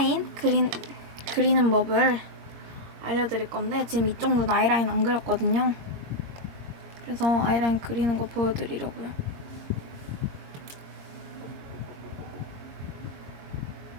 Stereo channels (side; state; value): left; late; 21 ms